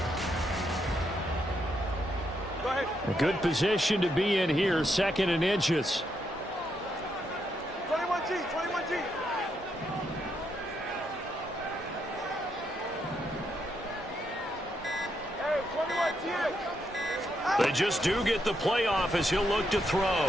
A good position to be in here, 2nd and inches. 21G, 21G. Hey, 21G. They just do get the playoff as he'll look to throw.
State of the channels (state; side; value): normal; both; correlation 0.79